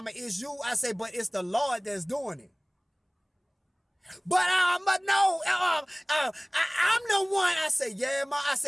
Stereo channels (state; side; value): identical; both; correlation 1.00